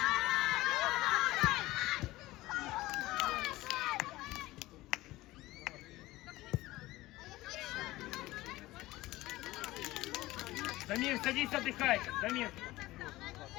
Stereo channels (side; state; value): right; quieter; 18.2 dB